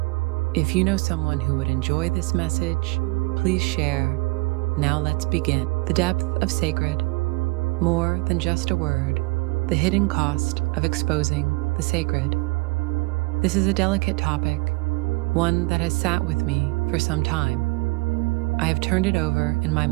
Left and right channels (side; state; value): left; quieter; 26.1 dB